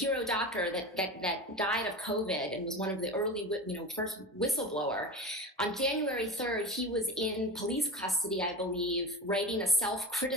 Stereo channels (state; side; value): normal; both; correlation 0.28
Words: doctor that died of COVID and was one of the early, first whistleblower. On January 3rd, he was in police custody, I believe, writing a